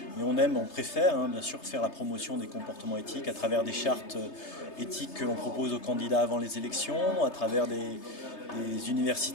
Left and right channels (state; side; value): late; right; 3.3 ms